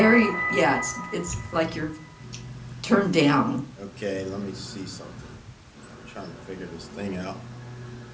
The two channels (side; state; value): both; identical; correlation 1.00